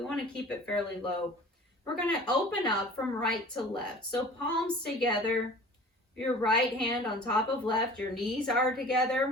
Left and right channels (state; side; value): normal; both; correlation 0.44